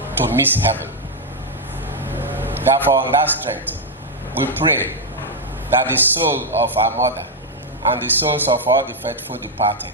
to miss heaven. Therefore, on that strength, we pray that the soul of our mother and the souls of all the faithful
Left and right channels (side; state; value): both; normal; correlation 0.01